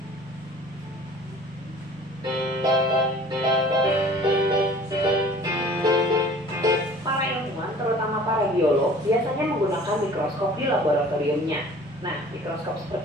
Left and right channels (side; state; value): both; normal; correlation 0.47